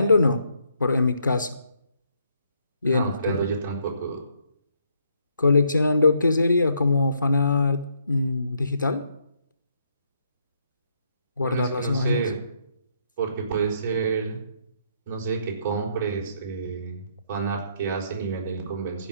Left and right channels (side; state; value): both; inverted; correlation -0.72